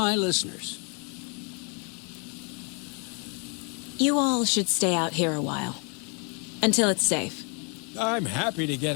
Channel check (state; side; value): quieter; right; 36.0 dB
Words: listeners. You all should stay out here a while. Until it's safe. I'm happy to